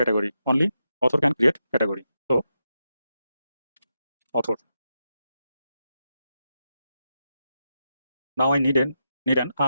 Only author can create category. So author. Now I need an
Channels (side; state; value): both; inverted; correlation -0.87